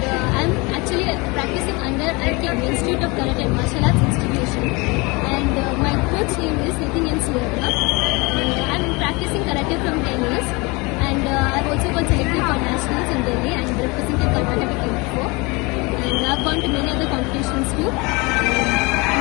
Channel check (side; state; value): right; quieter; 26.4 dB